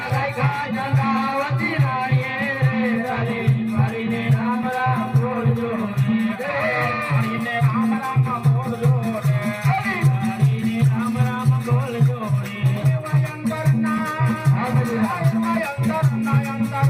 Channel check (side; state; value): both; identical; correlation 1.00